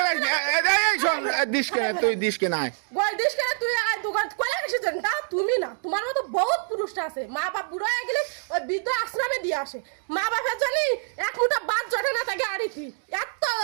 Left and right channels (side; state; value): left; silent; digital silence